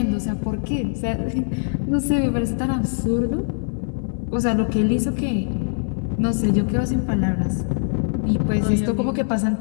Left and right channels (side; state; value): right; silent; digital silence